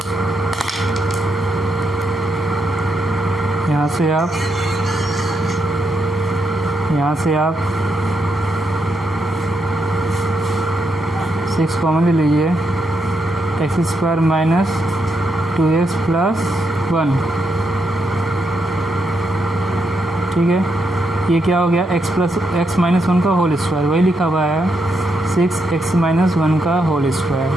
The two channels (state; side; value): normal; both; correlation 0.80